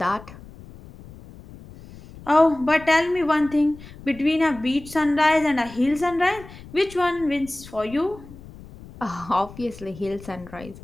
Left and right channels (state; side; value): noise; left; rumble, 18 dB below the sound